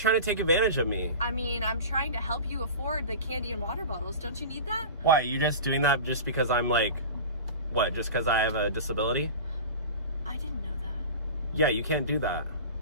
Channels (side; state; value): both; inverted; correlation -0.34